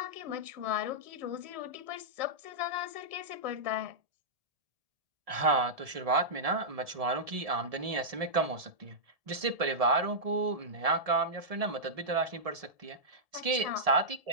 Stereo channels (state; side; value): late; left; 1.7 ms